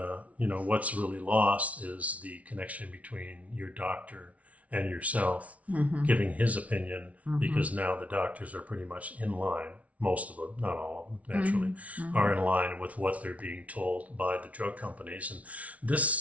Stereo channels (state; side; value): late; left; 0.067 ms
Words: what's really lost is the connection between your doctor and yourself giving his opinion, because now the doctors are pretty much in line. Most of them, not all of them, naturally, are in line with what they're being told by the drug companies. And this